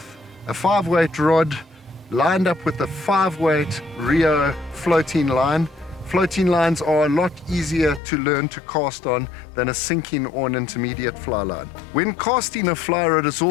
a 5-weight rod lined up with a 5-weight Rio floating line. Floating lines are a lot easier to learn to cast on than a sinking or an intermediate fly line. When casting a fly rod, it's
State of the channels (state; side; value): drops out; right; at 8.0 s